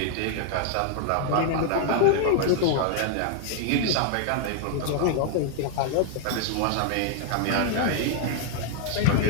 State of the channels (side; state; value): both; different; correlation 0.00